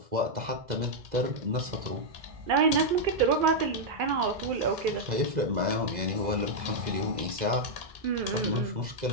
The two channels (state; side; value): late; left; 2.0 ms